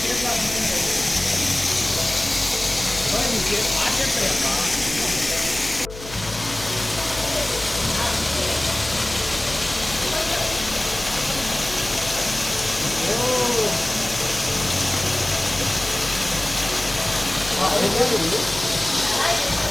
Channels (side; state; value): left; noise; hum, 14 dB below the sound